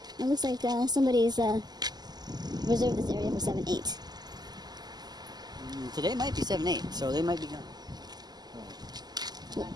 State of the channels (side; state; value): left; late; 0.20 ms